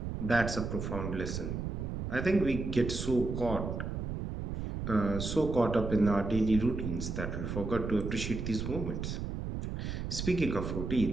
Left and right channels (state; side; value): noise; right; rumble, 4 dB below the sound